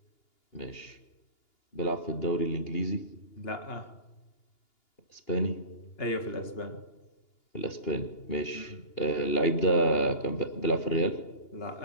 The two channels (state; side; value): late; right; 2.8 ms